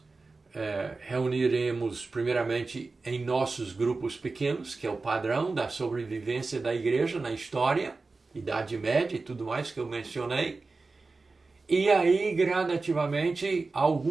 reuniremos primeiramente em nossos grupos pequenos, que é o padrão da sobrevivência da igreja na história, Idade Média e tudo mais que eu mencionei. E aí, gradativamente,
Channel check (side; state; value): left; quieter; 3.8 dB